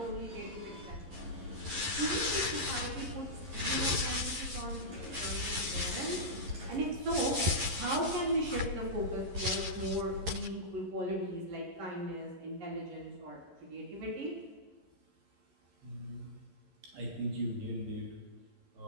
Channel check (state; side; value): late; left; 11 ms